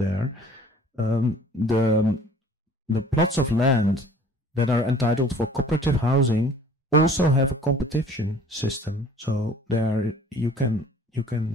The plots of land that are entitled for cooperative housing also have a competition system. So there you can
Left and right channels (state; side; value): normal; both; correlation 0.51